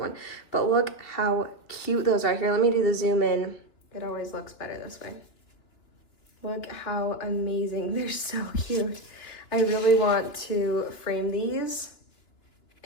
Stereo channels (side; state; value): right; late; 3.1 ms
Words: But look how cute those are. Here, let me do the zoom in. It always looks better this way. Look how amazing. They're so cute. I really want to frame these